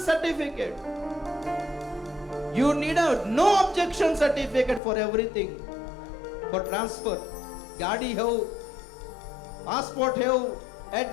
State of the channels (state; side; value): drops out; right; at 4.8 s